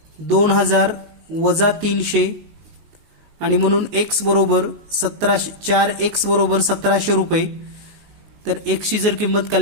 2000 वजा 300 आणि म्हणून x बरोबर 1700, 4x बरोबर 1700 रुपये। तर x ची जर किंमत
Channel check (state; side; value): late; left; 19 ms